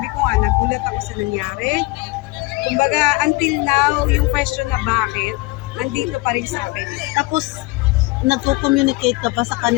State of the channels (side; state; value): right; quieter; 22.9 dB